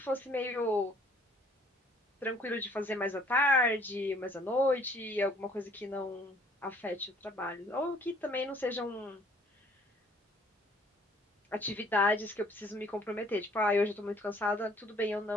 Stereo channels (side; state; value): both; normal; correlation 0.59